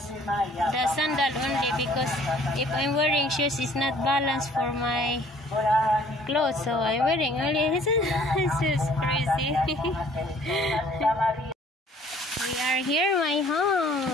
sandal only because if I'm wearing shoes, it's not balanced for my clothes. So I'm wearing only. This is crazy. We are here, my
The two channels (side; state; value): both; normal; correlation 0.57